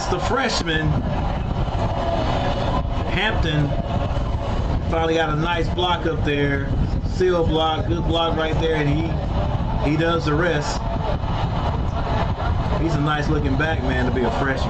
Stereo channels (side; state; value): both; identical; correlation 1.00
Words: the freshman. Hampton finally got a nice block up there. Seal block, good block right there, and he does the rest. He's a nice looking back, man, to be a